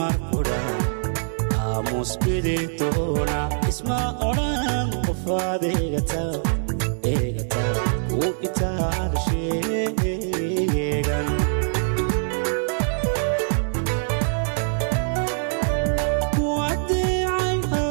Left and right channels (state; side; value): silent; left; digital silence